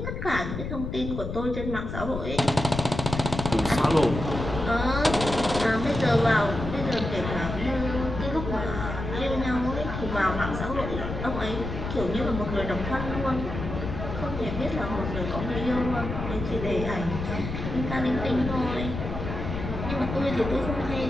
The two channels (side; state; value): left; noise; rumble, 5 dB below the sound